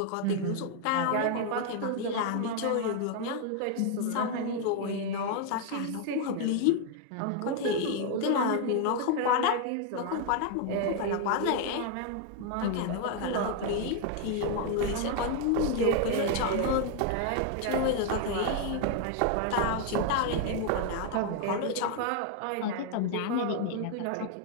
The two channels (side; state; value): both; different; correlation 0.00